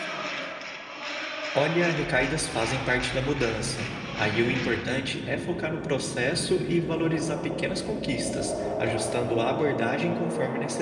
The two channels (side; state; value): both; identical; correlation 1.00